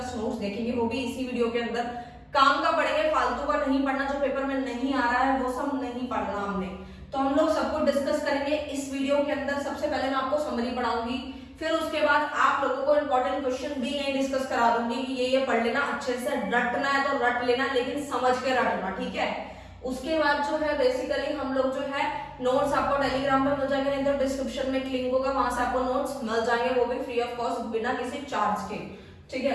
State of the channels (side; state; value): both; identical; correlation 1.00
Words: notes देखेंगे, वो भी इसी वीडियो के अंदर। काम का पढ़ेंगे, फालतू का नहीं पढ़ना, जो पेपर में नहीं आ रहा है वो सब नहीं पढ़ना हमने। तो हम लोग सब कुछ डिस्कस करेंगे इस वीडियो के अंदर। सबसे पहले मैं आपको समरी पढ़ाऊंगी, फिर उसके बाद आप लोगों को इंपॉर्टेंट क्वेश्चन भी यही डिस्कस करा दूंगी कि ये पढ़ लेना, अच्छे से रटना है तो रट लेना, लेकिन समझ के रटना, ठीक है। उसके बाद जो है बेसिकली हम लोग जो है नोट्स आपको टेलीग्राम पे मिल जाएंगे, नहीं तो डिस्क्रिप्शन में लिंक होगा, वहां से आपको नोट्स मिल जाएंगे, वो भी फ्री ऑफ कॉस्ट, बिना किसी चार्ज के, ठीक